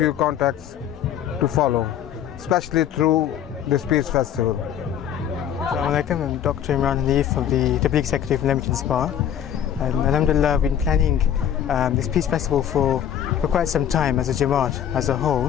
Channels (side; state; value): right; quieter; 9.7 dB